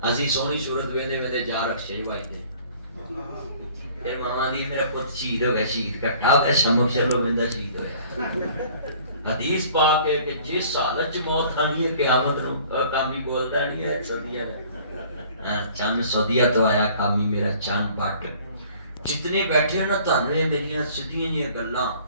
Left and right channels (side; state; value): both; inverted; correlation -0.53